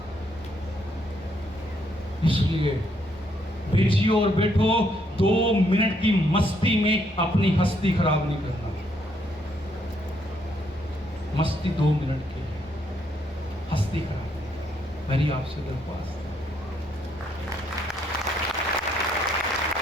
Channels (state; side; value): normal; both; correlation 0.72